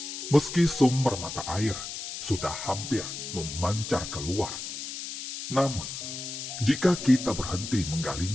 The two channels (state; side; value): noise; left; hiss, 7 dB below the sound